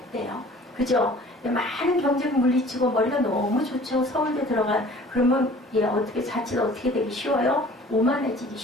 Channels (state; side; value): normal; both; correlation 0.48